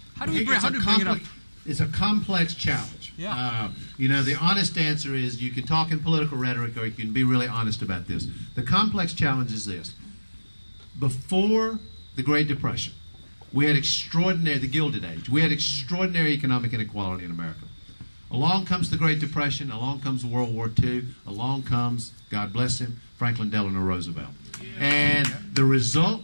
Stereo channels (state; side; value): inverted; both; correlation -1.00